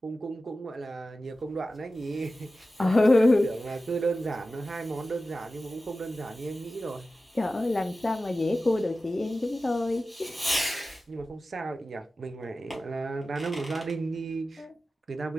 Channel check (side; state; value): both; normal; correlation 0.94